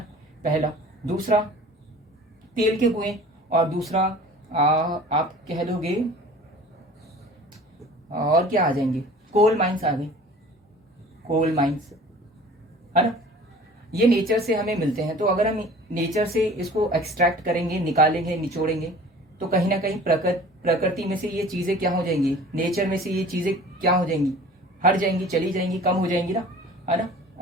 पहला। दूसरा तेल के कुएं, और दूसरा आप कह लोगे और क्या आ जाएंगे, कोल माइंस आ गई, कोल माइंस, है ना। ये नेचर से हमें मिलते हैं। तो अगर हम नेचर से इसको एक्सट्रैक्ट करेंगे, निकालेंगे, निचोड़ेंगे, तो कहीं ना कहीं प्रकृति में से ये चीजें क्या हो जाएंगी, नेचर में से ये चीजें क्या हो जाएंगी, हट जाएंगी, चली जाएंगी, कम हो जाएंगी ना, है ना।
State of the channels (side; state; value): both; normal; correlation 0.45